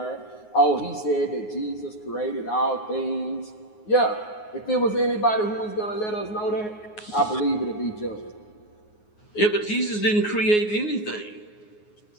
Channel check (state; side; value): late; right; 9.5 ms